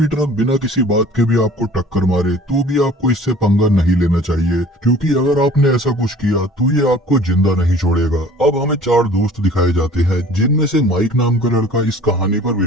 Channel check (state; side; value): normal; both; correlation 0.48